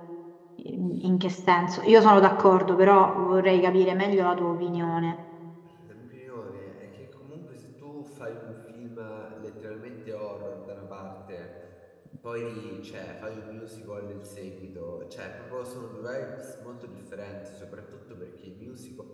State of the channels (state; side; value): identical; both; correlation 1.00